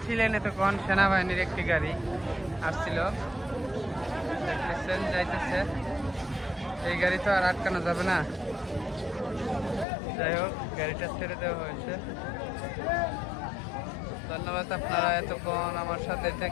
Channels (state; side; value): drops out; right; at 9.9 s